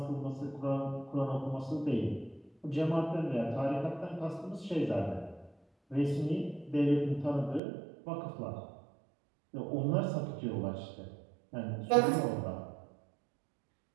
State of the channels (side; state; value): left; drops out; at 7.6 s